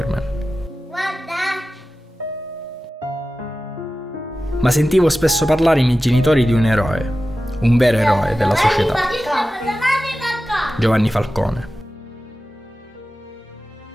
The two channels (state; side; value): normal; both; correlation 0.94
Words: Ma sentivo spesso parlare i miei genitori di un eroe, un vero eroe della società, Giovanni Falcone.